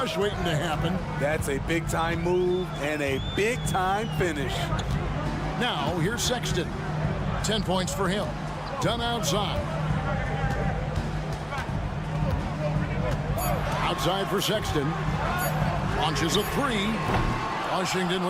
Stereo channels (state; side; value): identical; both; correlation 1.00